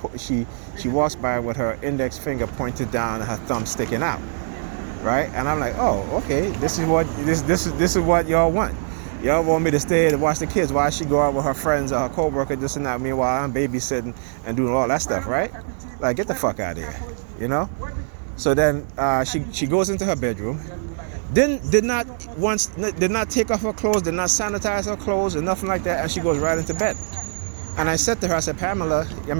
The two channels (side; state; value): left; silent; 56 dB below the other